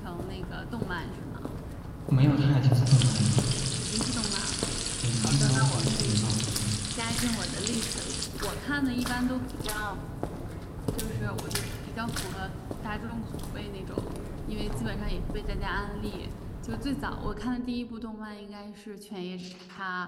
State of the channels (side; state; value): both; identical; correlation 1.00